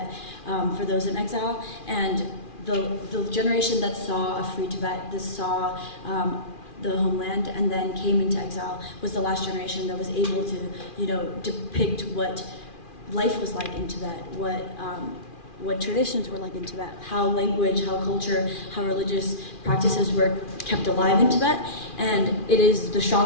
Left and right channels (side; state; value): right; late; 2.4 ms